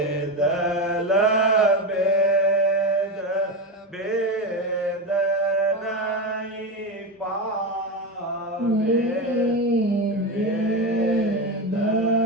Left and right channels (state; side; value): normal; both; correlation 0.16